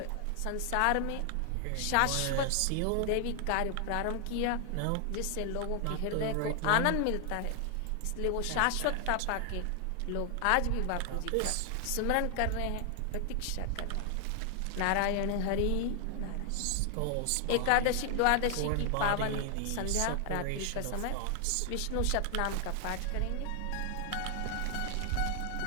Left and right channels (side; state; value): both; different; correlation 0.00